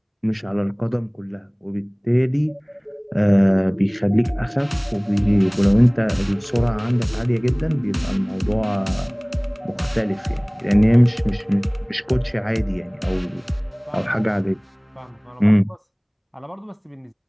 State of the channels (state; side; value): identical; both; correlation 1.00